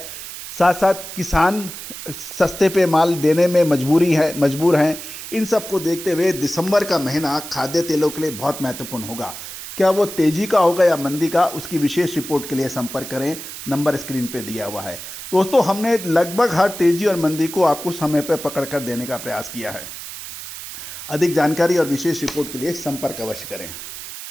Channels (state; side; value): noise; right; hiss, 11 dB below the sound